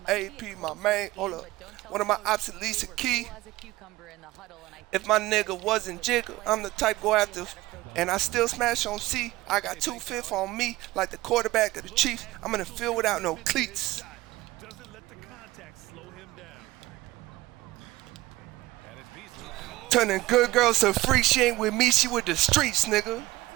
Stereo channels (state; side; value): quieter; left; 18.4 dB